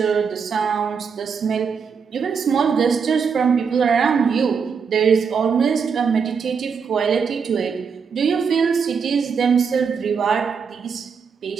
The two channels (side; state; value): left; quieter; 6.1 dB